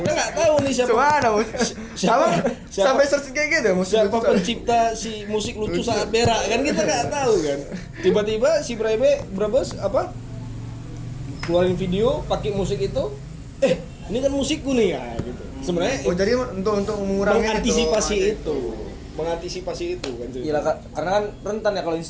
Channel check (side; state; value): both; identical; correlation 1.00